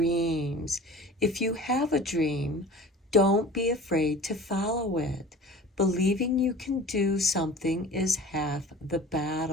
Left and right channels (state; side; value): normal; both; correlation 0.41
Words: If you have a dream, don't be afraid to follow it. Believing you can do something is half the